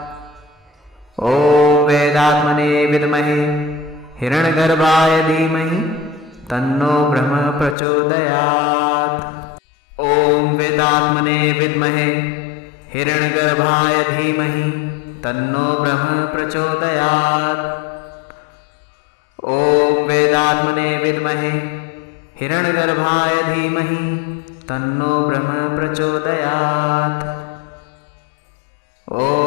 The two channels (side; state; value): right; drops out; at 7.8 s